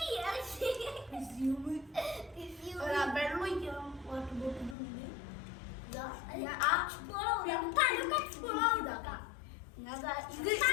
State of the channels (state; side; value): drops out; right; at 4.8 s